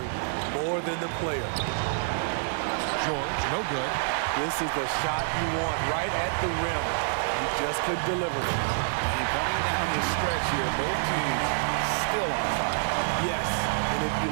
more than the player? George, no good. This is the shot you want right at the rim. He just couldn't deliver it. And coming down the stretch here, both teams still on fire. Yes, and if you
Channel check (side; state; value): left; silent; digital silence